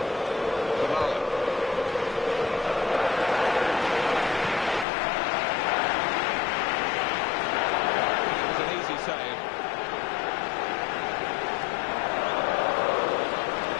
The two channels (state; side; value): drops out; right; at 4.9 s